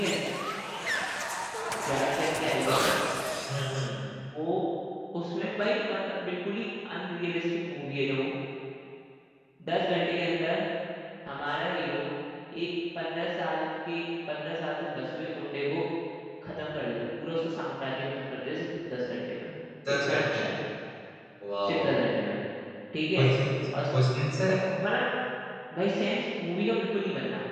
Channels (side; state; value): both; identical; correlation 1.00